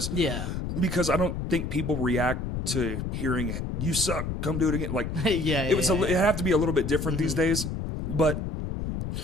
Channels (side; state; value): left; noise; rumble, 3 dB below the sound